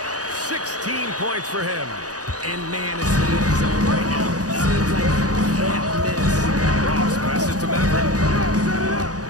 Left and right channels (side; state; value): left; late; 0.67 ms